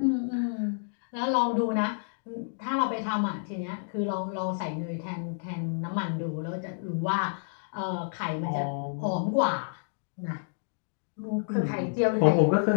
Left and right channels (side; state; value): right; silent; digital silence